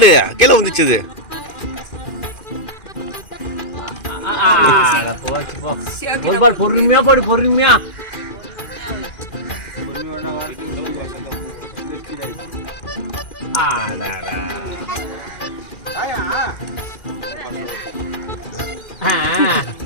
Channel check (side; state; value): right; late; 2.4 ms